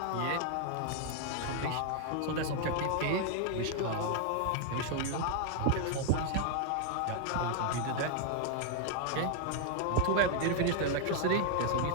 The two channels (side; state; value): both; different; correlation 0.00